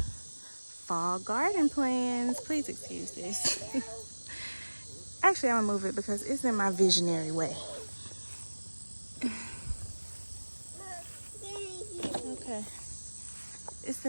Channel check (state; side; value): inverted; both; correlation -1.00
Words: fall garden plans. Please excuse this. Actually, I'm gonna move it because it's in my visionary way. Okay, it's